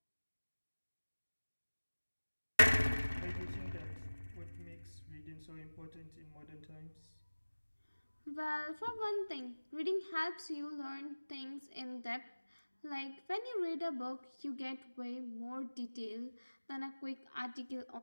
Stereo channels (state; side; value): inverted; both; correlation -1.00